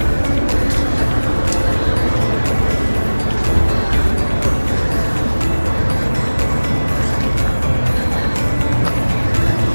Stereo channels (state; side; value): inverted; both; correlation -1.00